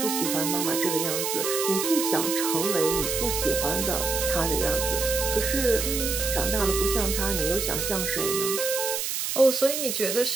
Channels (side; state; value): right; noise; hiss, 2 dB below the sound